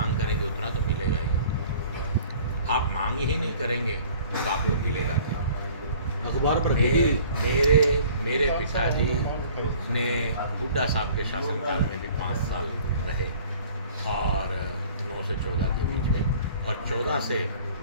करेंगे, उतना तो मिलेगा ही। आप मांग ही नहीं करेंगे तो आपको मिलेगा क्या? अखबार पर मेरे पिताजी ने हुड्डा साहब के शासनकाल में भी 5 साल रहे और 9 से 14 के बीच में, और 14 से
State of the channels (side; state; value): both; inverted; correlation -0.50